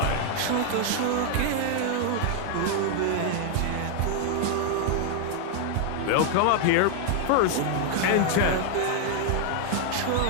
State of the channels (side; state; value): both; different; correlation 0.00